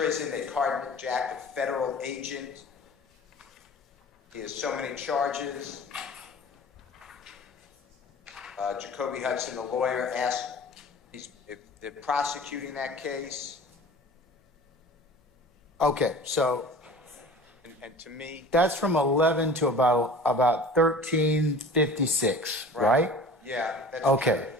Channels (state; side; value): normal; both; correlation 0.42